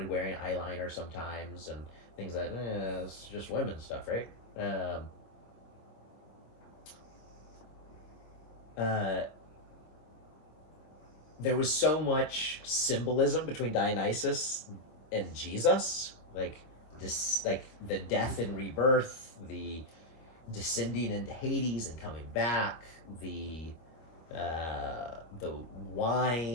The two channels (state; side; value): late; right; 25 ms